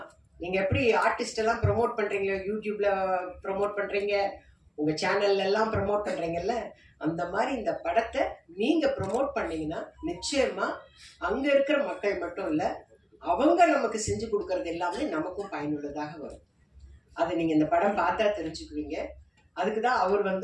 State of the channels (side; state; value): both; identical; correlation 1.00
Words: நீங்க எப்படி ஆர்டிஸ்ட் எல்லாம் ப்ரொமோட் பண்றீங்க, யூடியூப்ல ப்ரொமோட் பண்றீங்க, உங்க சேனல்ல எல்லாம் ப்ரொமோட் பண்றீங்கல்ல, அந்த மாதிரி இந்த படத்தை நீங்க ப்ரொமோட் பண்ணீங்கன்னா நிச்சயமா அங்க இருக்கிற மக்கள் மட்டும் இல்ல, அவங்க நமக்கு செஞ்சு கொடுக்கறது எல்லாமே நமக்கும் பயனுள்ளதாக வரும். அதை நீங்க இந்த படம் பார்த்தா தெரிஞ்சுக்குவீங்க. அதுக்குதான் அவர்